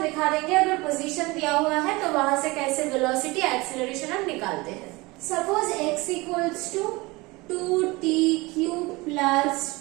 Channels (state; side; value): quieter; left; 23.3 dB